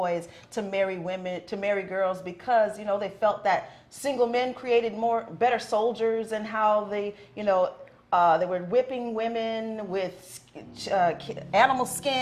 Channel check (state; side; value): identical; both; correlation 1.00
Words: to marry girls because, they felt that single men created better soldiers, and how they were whipping women with animal